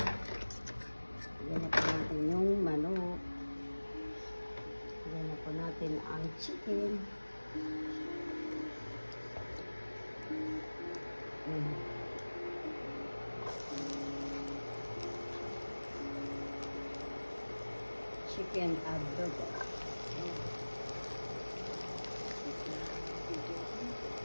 Yan na po natin yung manok. Yan na po natin ang chicken. Chicken adobo.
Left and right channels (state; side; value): inverted; both; correlation -1.00